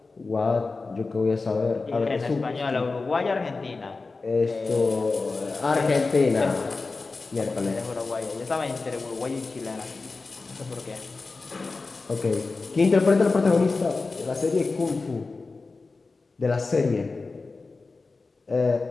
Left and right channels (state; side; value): quieter; right; 3.9 dB